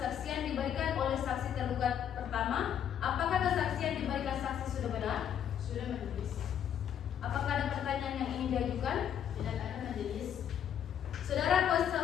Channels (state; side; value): quieter; right; 9.3 dB